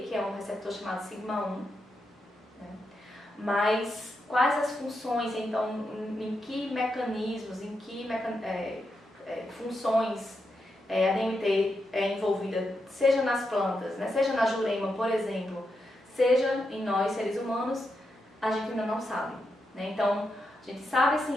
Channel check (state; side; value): normal; both; correlation 0.85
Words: que é um receptor chamado sigma-1, né? Mas quais as funções, então, em que mecanismos, em que funções a DMT é envolvida, seja nas plantas, né, seja na jurema, por exemplo, seja em nós, seres humanos, a gente ainda não sabe, né? Então, a gente sabe